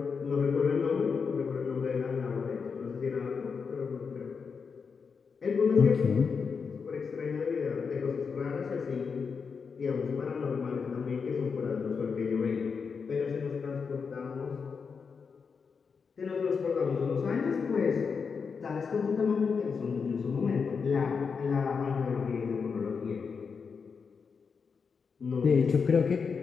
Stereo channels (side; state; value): right; quieter; 5.6 dB